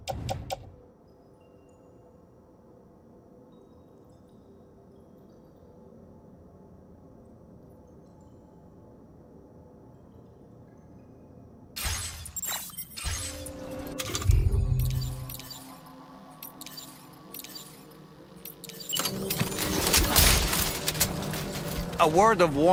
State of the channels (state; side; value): identical; both; correlation 1.00